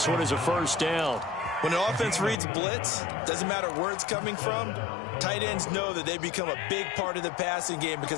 one is a first down. When an offense reads blitz, doesn't matter where it's coming from, tight ends know that they become a big part of the passing game because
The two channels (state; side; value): drops out; right; at 2.4 s